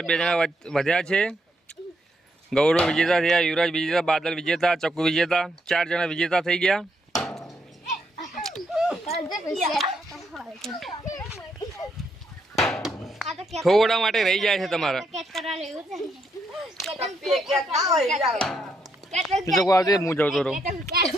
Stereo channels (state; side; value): normal; both; correlation 0.77